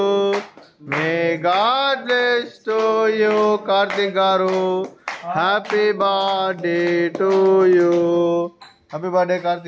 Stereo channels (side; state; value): both; identical; correlation 1.00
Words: may God bless to you Karthik గారు, happy birthday to you. Happy birthday